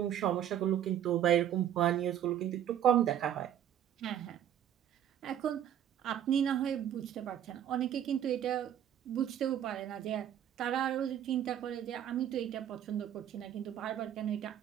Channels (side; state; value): left; quieter; 10.3 dB